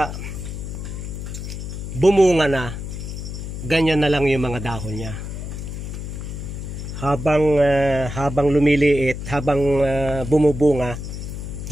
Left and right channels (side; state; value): left; noise; hum, 7 dB below the sound